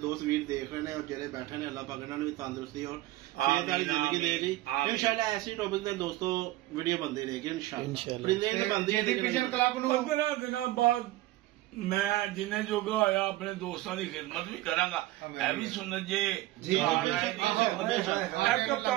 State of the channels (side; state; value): left; quieter; 17.0 dB